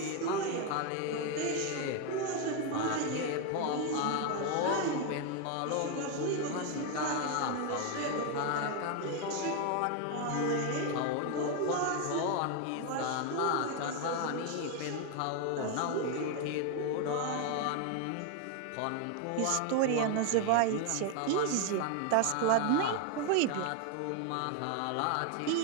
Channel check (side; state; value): both; different; correlation 0.01